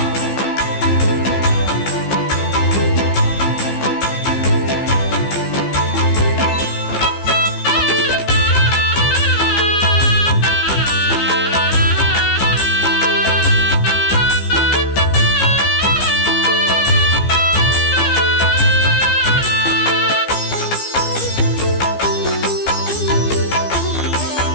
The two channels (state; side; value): late; right; 15 ms